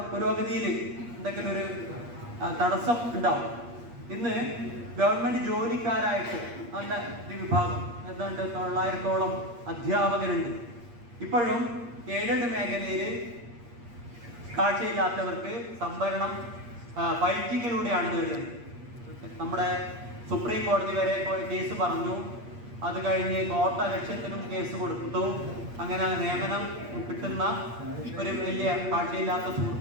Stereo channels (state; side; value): late; left; 8.5 ms